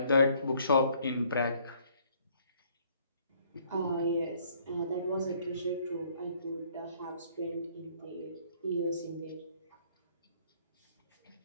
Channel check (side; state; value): both; inverted; correlation -0.63